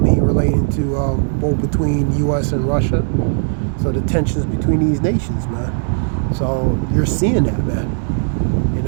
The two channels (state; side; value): silent; left; digital silence